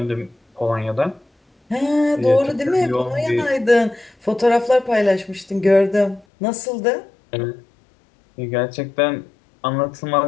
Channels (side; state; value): right; drops out; at 6.2 s